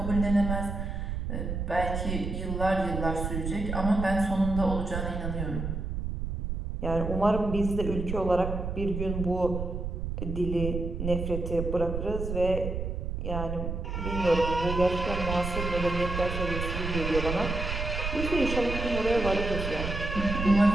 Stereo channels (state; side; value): noise; right; rumble, 3 dB below the sound